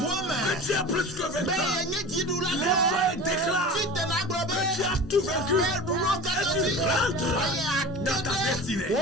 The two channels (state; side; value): normal; both; correlation 0.35